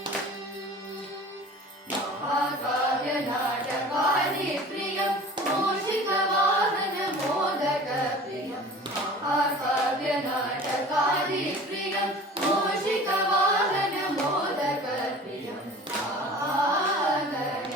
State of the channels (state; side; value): normal; both; correlation 0.42